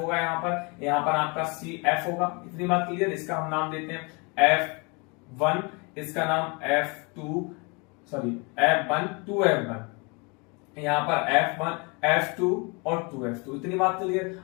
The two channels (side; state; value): right; quieter; 30.5 dB